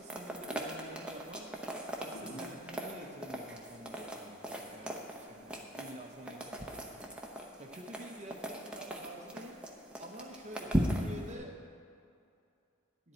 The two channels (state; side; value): normal; both; correlation 0.69